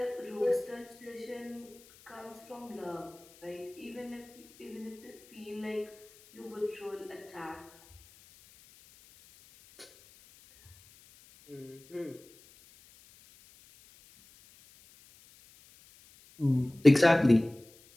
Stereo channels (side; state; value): left; noise; hiss, 25 dB below the sound